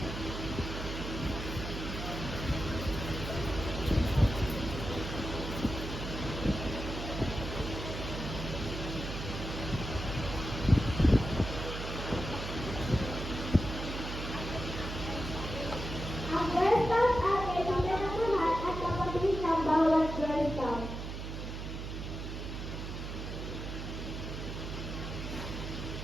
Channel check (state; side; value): noise; right; hum, 6 dB below the sound